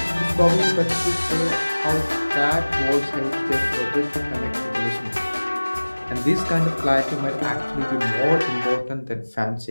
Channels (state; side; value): inverted; both; correlation -1.00